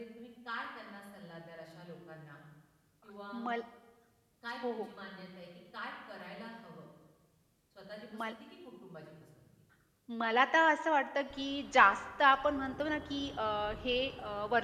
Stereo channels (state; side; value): identical; both; correlation 1.00